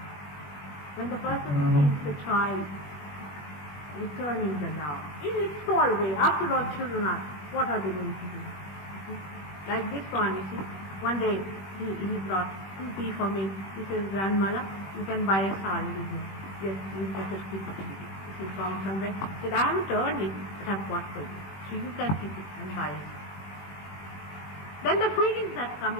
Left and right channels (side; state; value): right; late; 21 ms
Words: When the person sees the child returning the love, in its small way. After all, children are, what are they going to do? Like this one, you see, one day he brought 2 tea for me. He says, grandmother, you can buy a sari with me. Yes, you better keep it. He found somewhere. He said, I haven't earned it, but I've got for you. So you can keep it and buy it. Then the feelings that